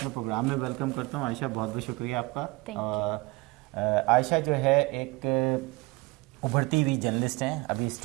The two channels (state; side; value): quieter; left; 22.9 dB